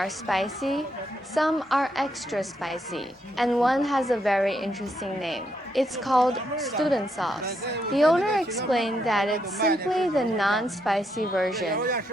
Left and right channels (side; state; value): both; normal; correlation 0.78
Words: spicy, some are extra spicy, and one has a very interesting name. It's called student sauce. The owner explained that it's simply the non-spicy version,